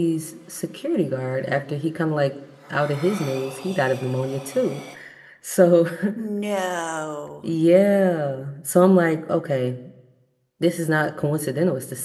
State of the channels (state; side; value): identical; both; correlation 1.00